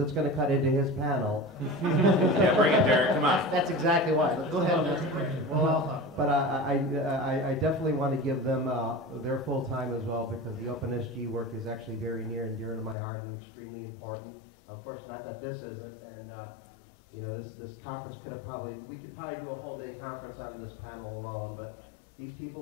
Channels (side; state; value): right; drops out; at 13.0 s